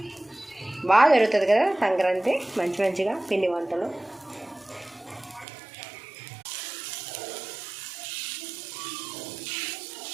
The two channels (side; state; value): left; drops out; at 5.5 s